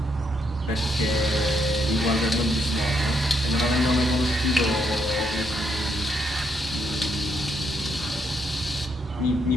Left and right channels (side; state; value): both; normal; correlation 0.76